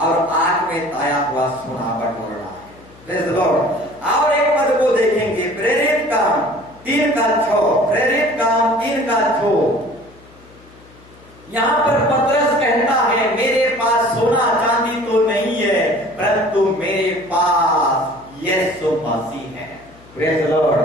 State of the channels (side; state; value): left; noise; hum, 25 dB below the sound